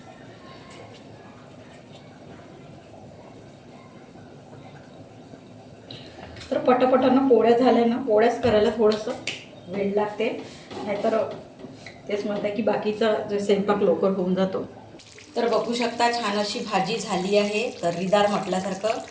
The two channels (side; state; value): both; identical; correlation 1.00